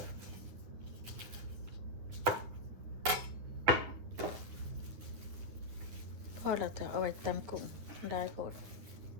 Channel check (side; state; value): left; late; 10 ms